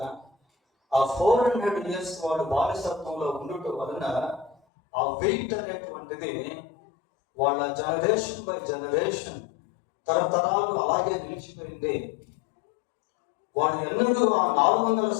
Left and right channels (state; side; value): drops out; right; at 4.5 s